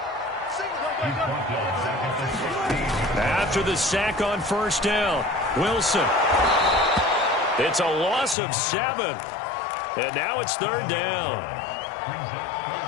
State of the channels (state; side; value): drops out; right; at 8.3 s